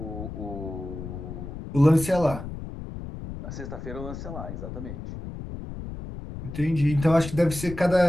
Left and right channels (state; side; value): noise; left; rumble, 9 dB below the sound